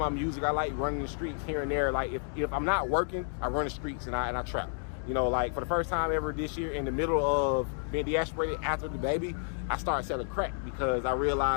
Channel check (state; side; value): silent; right; 57 dB below the other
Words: music, I like running the streets here and there. Like, if I'm not working, I run the streets and I trap. You know, like, for the first time ever this year, in the middle of being deasperated after the baby, I started selling crack, because I